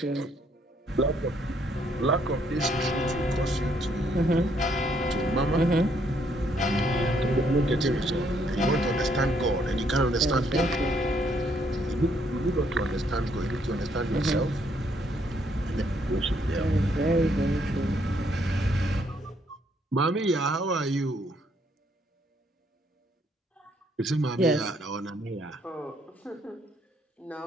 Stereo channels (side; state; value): both; normal; correlation 0.70